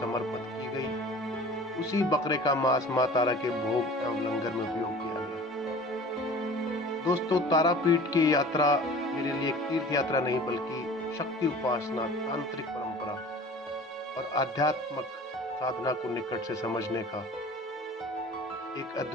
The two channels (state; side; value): normal; both; correlation 0.43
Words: की गई। उसी बकरे का मांस माँ तारा के भोग एवं लंगर में उपयोग किया गया। दोस्तों, तारापीठ की यात्रा मेरे लिए एक तीर्थ यात्रा नहीं बल्कि शक्ति उपासना, तांत्रिक परंपरा और आध्यात्मिक साधना को निकट से समझने का एक